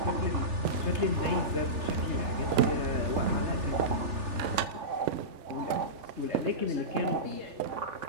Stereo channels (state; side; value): late; left; 3.4 ms